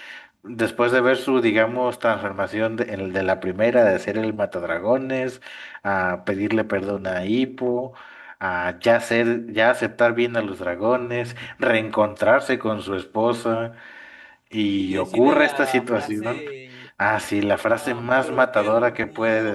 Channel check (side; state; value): both; identical; correlation 1.00